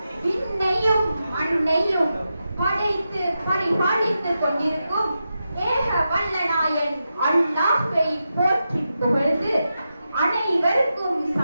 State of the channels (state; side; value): inverted; both; correlation -0.89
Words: விண்ணையும் மண்ணையும் படைத்து பரிபாலித்துக் கொண்டிருக்கும் ஏக வல்லநாயன் அல்லாஹ்வை போற்றி புகழ்ந்து அனைவருக்கும்